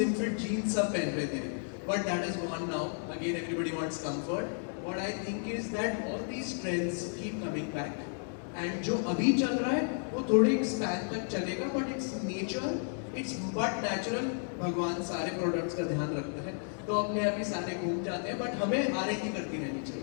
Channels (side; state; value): right; silent; 56 dB below the other